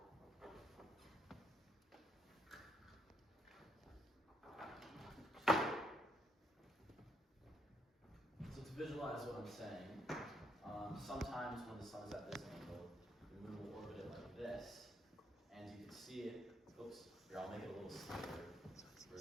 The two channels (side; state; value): both; normal; correlation 0.74